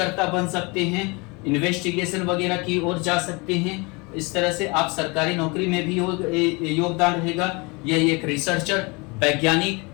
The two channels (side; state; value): right; quieter; 27.8 dB